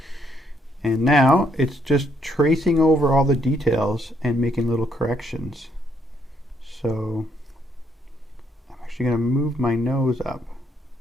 And now it's just tracing over all the details and making little corrections. So I'm actually going to move my nose up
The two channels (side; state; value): both; normal; correlation 0.72